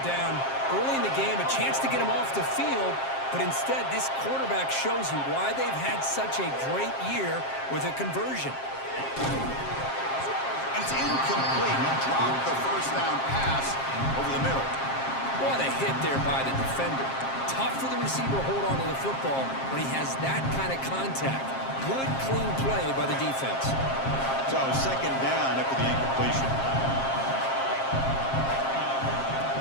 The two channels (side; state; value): right; late; 7.5 ms